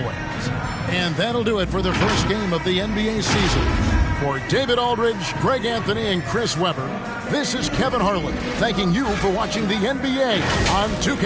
And that'll do it for the first game of the NBA season. For David Aldridge, Greg Anthony, and Chris Webber, this is Kevin Harlan thanking you for watching the NBA on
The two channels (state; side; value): identical; both; correlation 1.00